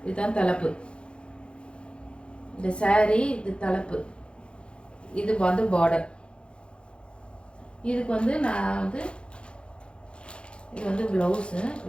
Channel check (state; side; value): late; right; 0.056 ms